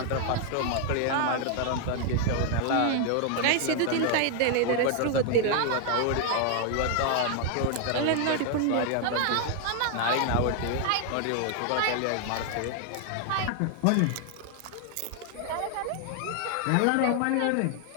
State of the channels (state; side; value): different; both; correlation 0.00